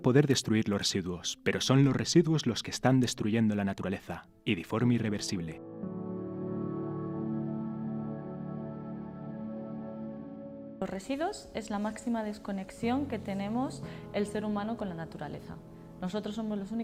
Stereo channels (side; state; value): both; identical; correlation 1.00